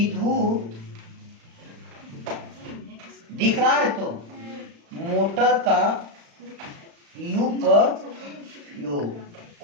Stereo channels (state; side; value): late; left; 35 ms